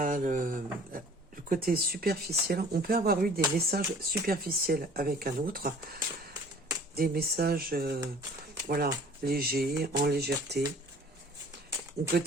le côté superficiel. On peut avoir eu des messages superficiels avec un autre. Des messages... voilà, léger, en légèreté. Ou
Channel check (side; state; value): both; normal; correlation 0.49